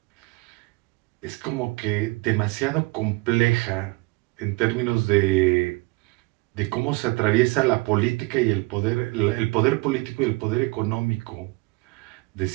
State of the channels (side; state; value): left; quieter; 25.6 dB